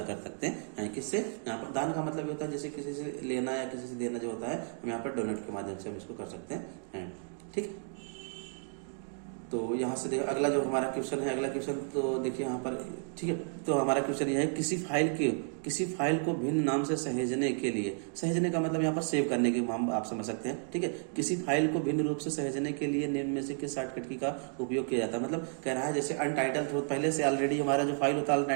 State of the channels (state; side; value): silent; left; 56 dB below the other